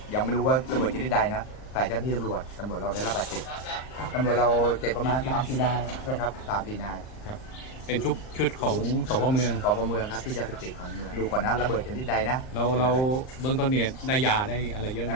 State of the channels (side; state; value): right; late; 39 ms